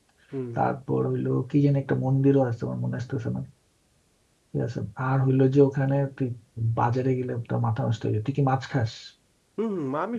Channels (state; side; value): identical; both; correlation 1.00